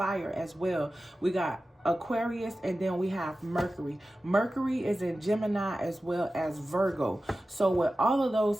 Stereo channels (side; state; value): both; normal; correlation 0.95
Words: as well. We got Aquarius, and then we have Mercury. Mercury is in Gemini as well as Virgo. So with all of